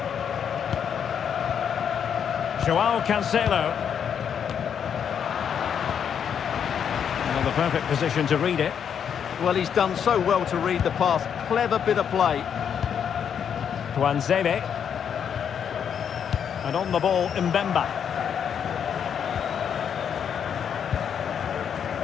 João Cancelo. Well, the perfect position to read it. Well, he's done so well to read the pass. Clever bit of play. Tuanzebe. And on the ball, Mbemba.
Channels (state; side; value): quieter; right; 8.0 dB